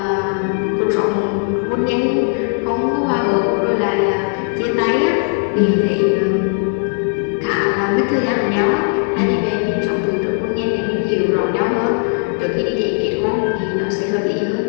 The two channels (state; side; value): silent; right; 58 dB below the other